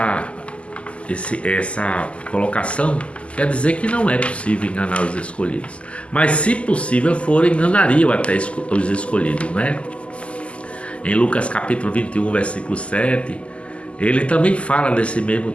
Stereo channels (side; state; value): right; late; 0.057 ms